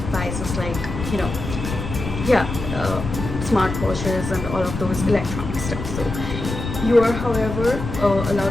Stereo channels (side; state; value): left; noise; rumble, 6 dB below the sound